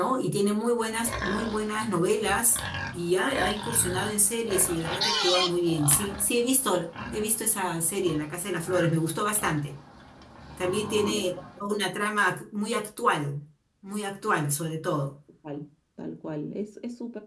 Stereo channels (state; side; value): identical; both; correlation 1.00